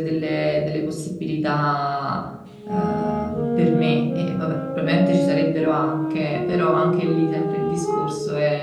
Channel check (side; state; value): both; identical; correlation 1.00